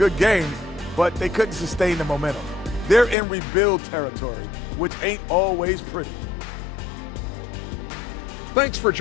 games, but they couldn't sustain the momentum. They're in rebuild territory, which ain't always pretty. Thanks for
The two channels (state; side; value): drops out; right; at 3.2 s